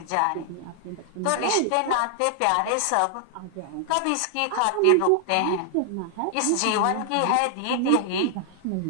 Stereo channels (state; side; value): different; both; correlation 0.00